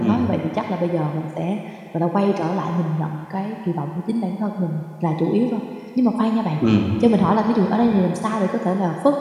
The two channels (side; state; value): both; identical; correlation 1.00